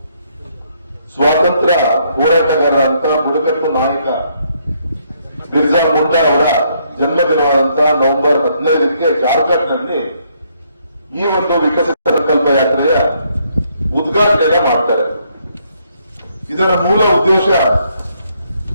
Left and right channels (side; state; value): both; inverted; correlation -0.71